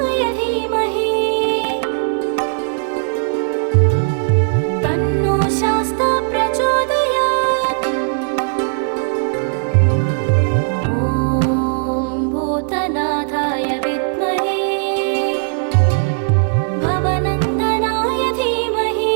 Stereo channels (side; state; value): left; silent; digital silence